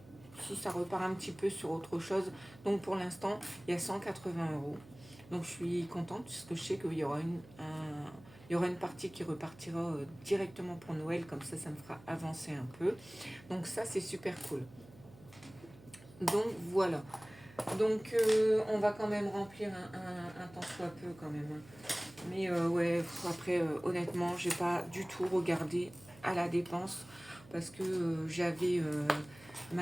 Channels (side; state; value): right; noise; hum, 22 dB below the sound